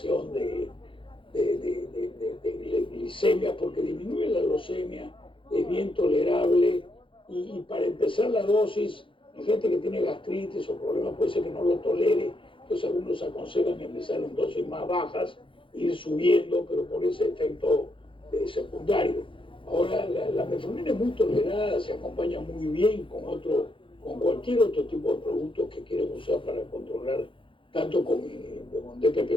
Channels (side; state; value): right; late; 0.25 ms